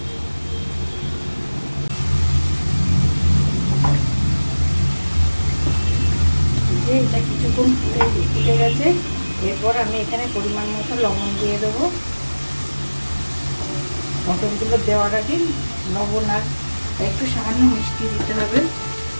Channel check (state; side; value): inverted; both; correlation -1.00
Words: এটা কিছুক্ষণ ফুটে গেছে, এরপর আমি এখানে পরিমাণ মতো লবণ দিয়ে দেবো। মটনগুলো দেওয়ার আগে লবণ আর একটু সামান্য মিষ্টি দিতে হবে।